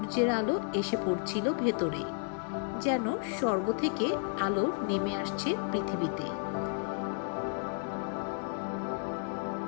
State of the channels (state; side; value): silent; right; 56 dB below the other